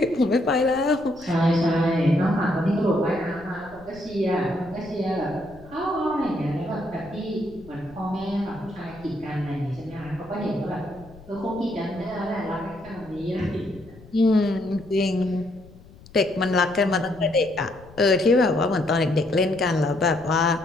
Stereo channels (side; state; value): left; noise; rumble, 21 dB below the sound